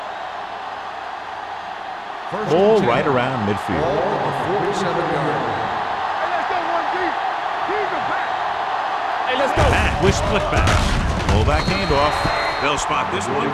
Ball right around midfield. Ball on the 47-yard line. Hey, let's go, 1D. He's the back. Hey, let's go. Matt with split backs. Fullback handoff. They'll spot this one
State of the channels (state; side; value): identical; both; correlation 1.00